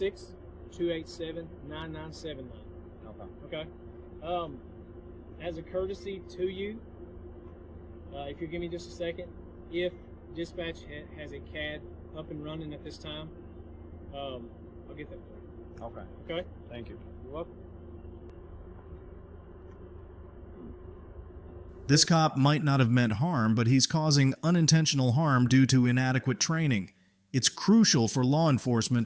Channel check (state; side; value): identical; both; correlation 1.00